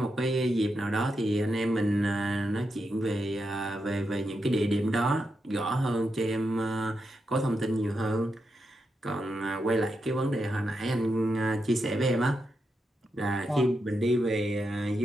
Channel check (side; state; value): both; normal; correlation 0.85